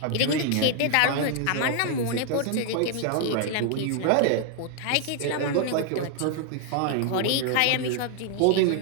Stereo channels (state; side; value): different; both; correlation 0.00